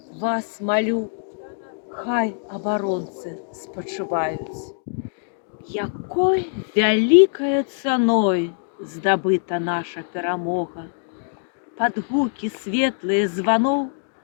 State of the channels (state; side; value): silent; right; digital silence